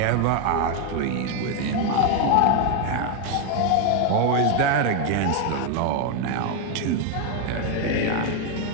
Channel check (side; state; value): both; different; correlation 0.01